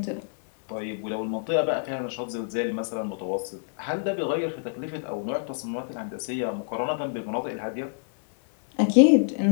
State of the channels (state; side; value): silent; right; digital silence